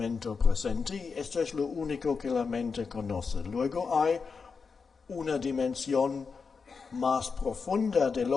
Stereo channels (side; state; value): right; quieter; 5.2 dB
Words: presente, y esto es lo único que la mente conoce. Luego hay una dimensión más profunda de